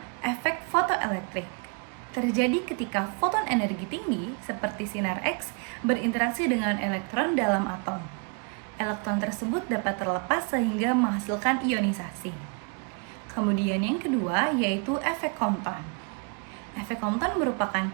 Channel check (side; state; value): left; quieter; 36.3 dB